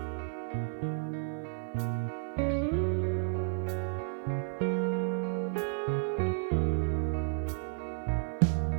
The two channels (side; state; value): left; silent; digital silence